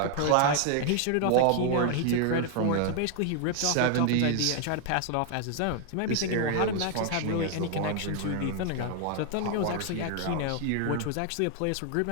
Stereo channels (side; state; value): both; different; correlation 0.00